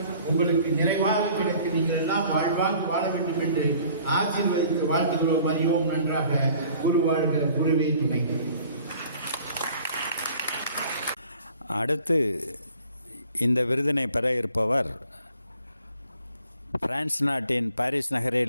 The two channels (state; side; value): inverted; both; correlation -0.53